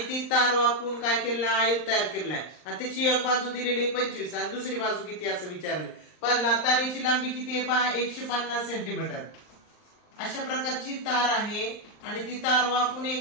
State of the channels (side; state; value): right; late; 39 ms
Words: तार वाकवून काय केलेलं, आयत तयार केलेला आहे आणि त्याची एक बाजू दिलेली 25 आणि दुसरी बाजू किती असं विचारले। पहिला तारेची लांबी किती आहे पहा, 150 सेंटीमीटर। अशा प्रकारची तार आहे आणि ती तार वाकवून